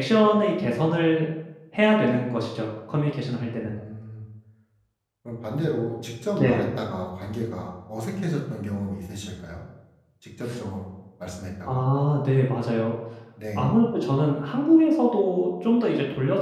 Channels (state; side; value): identical; both; correlation 1.00